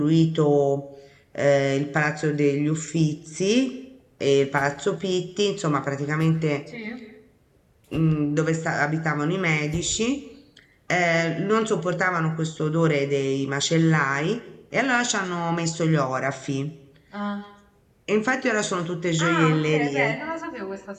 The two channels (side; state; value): both; identical; correlation 1.00